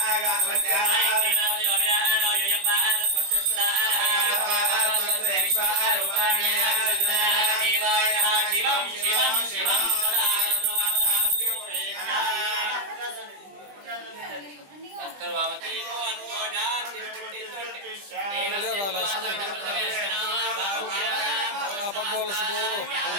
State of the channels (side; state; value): left; late; 20 ms